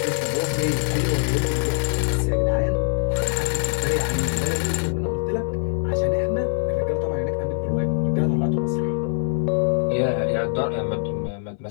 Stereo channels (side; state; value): right; silent; 61 dB below the other